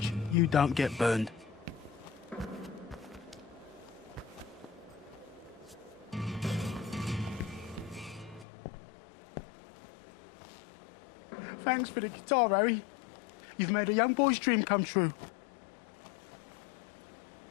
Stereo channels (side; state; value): right; drops out; at 8.5 s